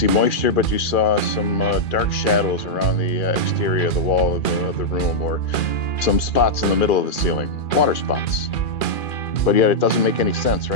moisture, but you saw some dark shadows around the exterior of the wall of the room, or some spots in the middle of the ceiling, water spots. But yet it doesn't make any sense,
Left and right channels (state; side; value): late; right; 2.4 ms